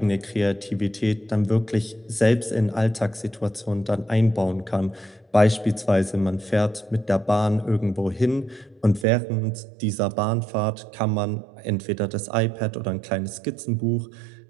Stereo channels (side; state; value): left; drops out; at 9.1 s